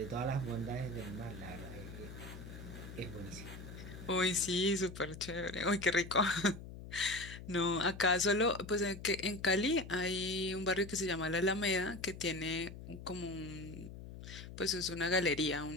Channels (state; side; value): noise; left; hum, 12 dB below the sound